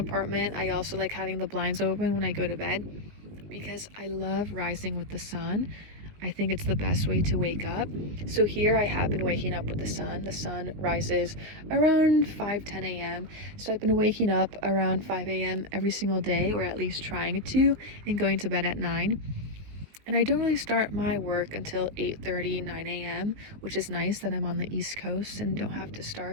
I also like having the blinds open when I go to bed because I love rising with the sun. I think it's the best way to wake up. So here I have been waking up with the sun. The sun rises around 5-10 a.m. So I've been waking up around 5 a.m. every single day, or at least trying to, and going to bed at 9. And I don't really start my work until 8:30, 9 a.m., which is nice that I'm on the East Coast and don't have to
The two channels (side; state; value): left; late; 19 ms